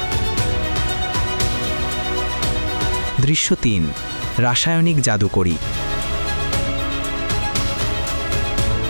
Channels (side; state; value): both; inverted; correlation -1.00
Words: দৃশ্য 3। রাসায়নিক জাদুকরি।